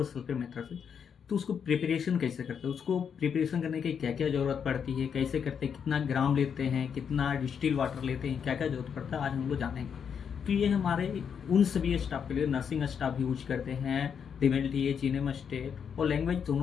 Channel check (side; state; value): right; quieter; 7.3 dB